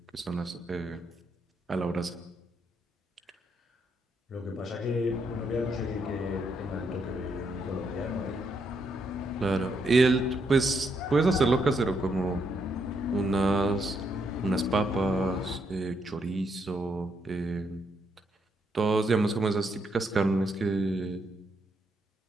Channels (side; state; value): both; normal; correlation 0.77